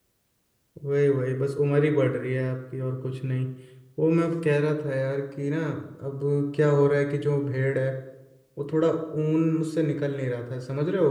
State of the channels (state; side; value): identical; both; correlation 1.00